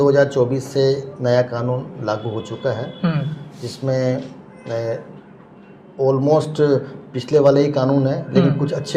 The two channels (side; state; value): both; identical; correlation 1.00